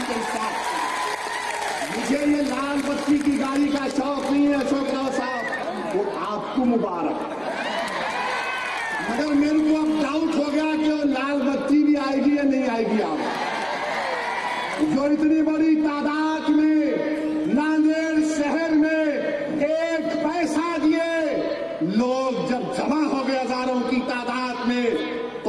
साथ। मुझे ये लाल बत्ती की गाड़ी का शौक नहीं है अशोक राव साहब, वो आपको मुबारक। मगर मेरे को अब डाउट हो गया कि वो लाल बत्ती भी आएगी या नहीं आएगी। आप जो इतनी बड़ी तादाद में नांदेड़ शहर में एक पैसा दिए लोग जब जमा हो गए हजारों की तादाद में,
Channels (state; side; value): noise; left; hum, 29 dB below the sound